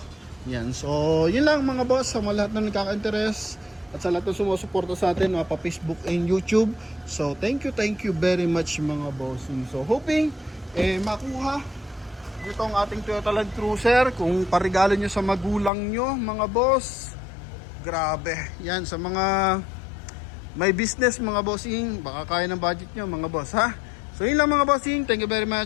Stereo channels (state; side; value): drops out; right; at 15.7 s